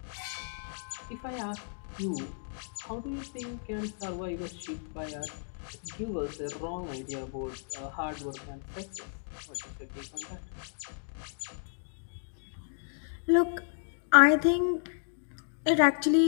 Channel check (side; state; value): right; silent; digital silence